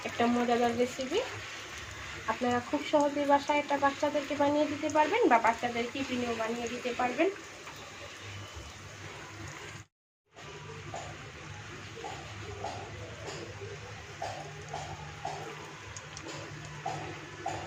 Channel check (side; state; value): both; identical; correlation 1.00